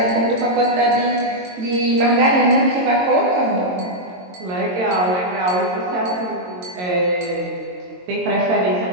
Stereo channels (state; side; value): late; left; 22 ms